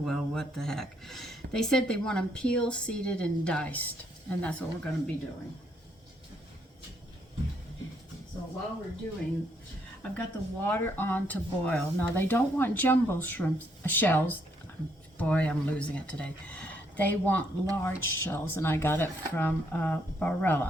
what the heck. They said they want them peeled, seeded, and diced. And that's what we're going to be doing. So while we're doing, I've got the water on to boil. Now they don't want jumbo shells. Boy, I'm losing it today. They want large shells, and I got it from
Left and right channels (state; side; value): normal; both; correlation 0.72